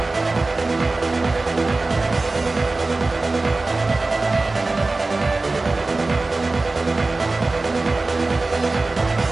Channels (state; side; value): quieter; left; 3.3 dB